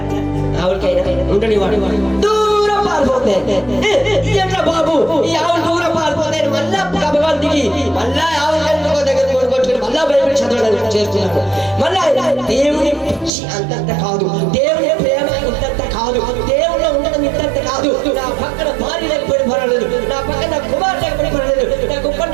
ఆవులకైనా ఉండని వాడు దూరం పారిపోతాయి. బాబు ఈ ఆవులు దూరం పారిపోతాయి, మళ్ళా గబగాలు దిగి మళ్ళా ఆవుల దగ్గర కొట్టుకుని మళ్ళా బైబిల్ చదవడానికి చేస్తున్నాడు. మళ్ళా దేవుని పిచ్చి అంతంత కాదు, దేవుని ప్రేమ ఇంతంత కాదు, దేవుళ్ళు ఉండడం ఇంతంత కాదు. నా పక్కన భార్య లేకపోయిన పర్వాలేదు, నా పక్కన నా కుమార్ లేకపోయిన పర్వాలేదు, నా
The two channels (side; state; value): left; drops out; at 13.3 s